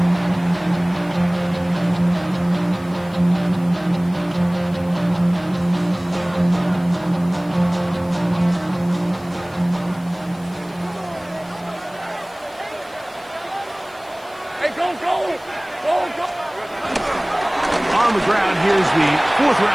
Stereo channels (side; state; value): left; noise; hiss, 26 dB below the sound